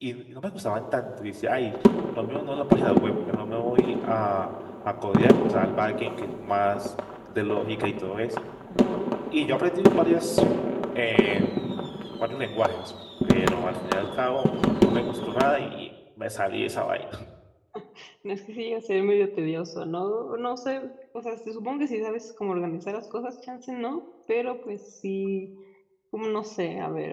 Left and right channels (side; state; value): both; identical; correlation 1.00